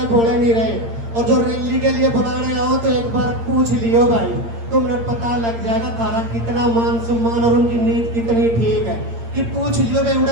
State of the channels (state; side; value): late; left; 8.7 ms